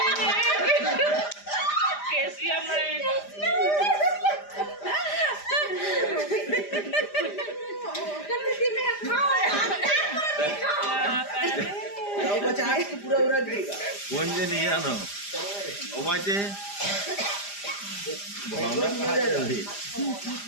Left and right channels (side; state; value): right; late; 5.0 ms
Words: कैल्शियम है। बच्चा आज तो पूरा उड़ा देगा कौन जे नहीं आना ओ बाचे भावना कहाँ जल्दी